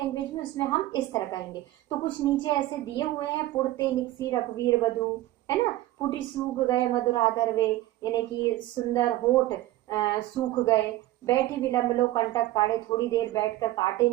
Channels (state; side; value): quieter; left; 16.1 dB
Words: में उसमें हम इस तरह कहेंगे। तो कुछ नीचे ऐसे दिए हुए हैं, पुड़ते निकसी रघुवीर बधु, है ना, पुटी सूख गए मधुराधर वे, यानी कि सुंदर होठ सूख गए, बैठी विलंब लो कंटक काढ़े, थोड़ी देर बैठकर कांटे